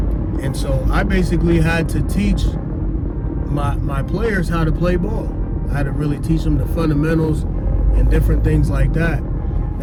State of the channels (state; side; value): identical; both; correlation 1.00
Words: And so I basically had to teach my players how to play ball. I had to really teach them the fundamentals and different things like that.